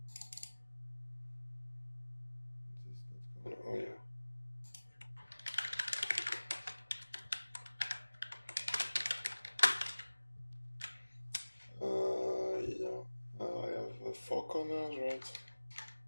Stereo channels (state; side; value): inverted; both; correlation -1.00